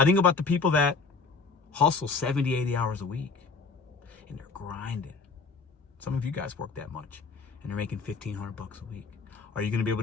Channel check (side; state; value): right; quieter; 4.6 dB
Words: think about the people that hustle 70, 80 hours a week, and they're grinding. Some of you guys work that much, and they're making $1,500 a week. Are you going to be able